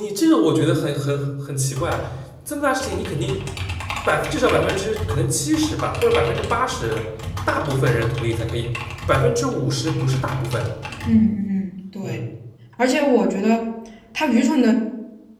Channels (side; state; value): both; identical; correlation 1.00